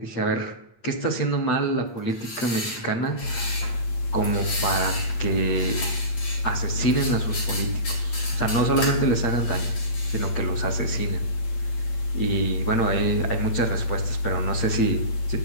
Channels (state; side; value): late; right; 8.7 ms